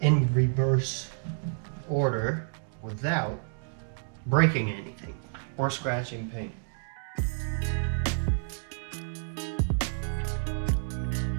in reverse order without breaking anything or scratching paint.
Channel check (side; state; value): left; silent; 58 dB below the other